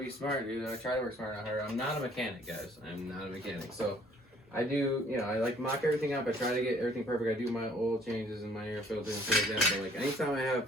smart, dude. I try to work smart, not harder. I'm not a mechanic, guys. I'm not a mechanic. So, I do, you know, I like mock everything up. I try to get everything perfect. I do my oil changes and my air filter and things like that. But like anytime I have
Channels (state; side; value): normal; both; correlation 0.58